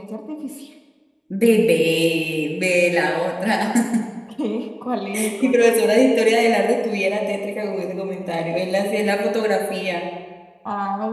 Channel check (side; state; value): both; identical; correlation 1.00